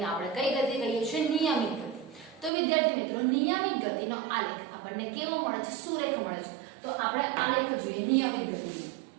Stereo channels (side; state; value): left; drops out; at 2.5 s